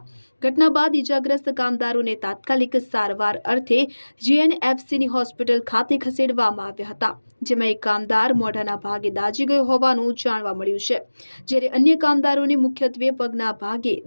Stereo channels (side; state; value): both; inverted; correlation -1.00